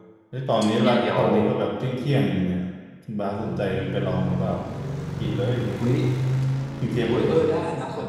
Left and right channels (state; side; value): identical; both; correlation 1.00